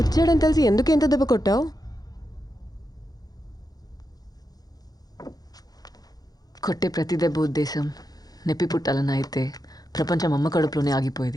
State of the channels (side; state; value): right; late; 0.19 ms